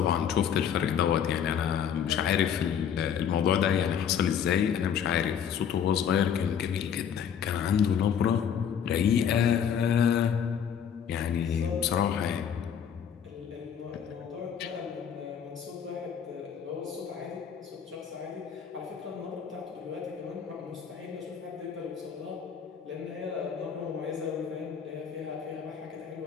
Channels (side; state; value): right; quieter; 8.1 dB